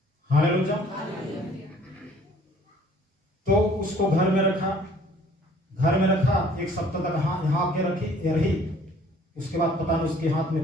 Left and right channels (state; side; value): normal; both; correlation 0.56